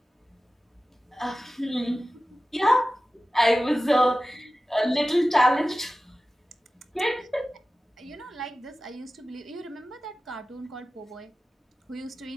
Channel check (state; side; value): normal; both; correlation 0.96